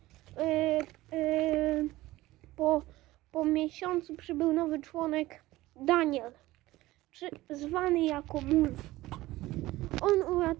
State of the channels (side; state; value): left; quieter; 17.6 dB